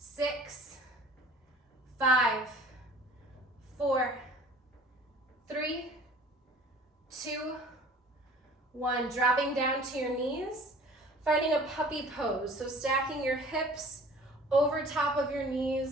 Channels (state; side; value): normal; both; correlation 0.48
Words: 5, 4, 3, 2, 1. Dropping down to your knees, finding a puppy pose. So stacking your hips over top of your